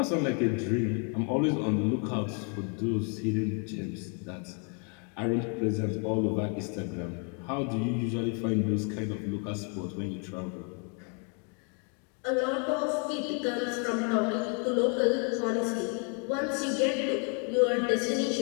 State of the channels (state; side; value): quieter; right; 38.3 dB